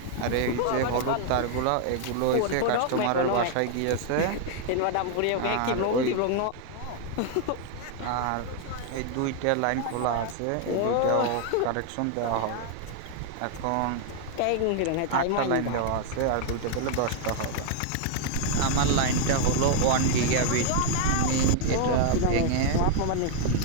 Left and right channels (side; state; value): both; different; correlation 0.00